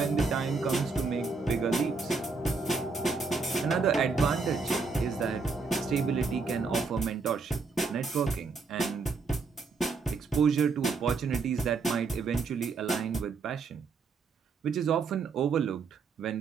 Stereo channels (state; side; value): quieter; left; 4.5 dB